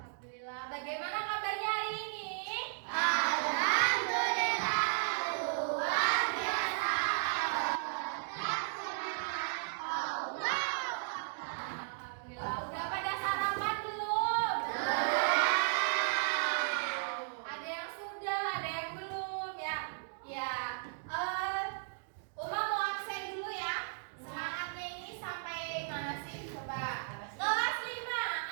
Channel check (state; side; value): silent; left; digital silence